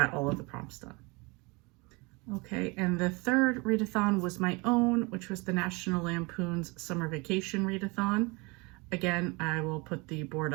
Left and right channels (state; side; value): quieter; left; 27.0 dB